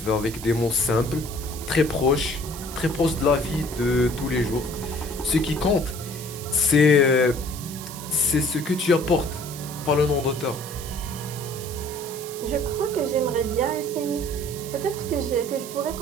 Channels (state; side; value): noise; right; hiss, 12 dB below the sound